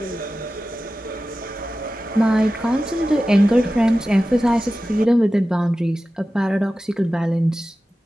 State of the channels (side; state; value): both; normal; correlation 0.94